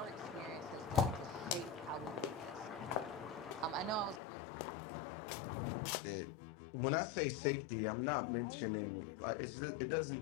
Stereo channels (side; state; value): right; drops out; at 4.2 s